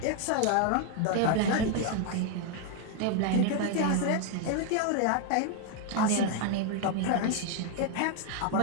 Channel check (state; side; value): different; both; correlation 0.01